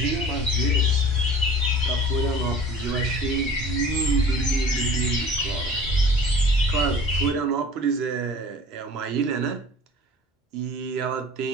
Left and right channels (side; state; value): both; normal; correlation 0.44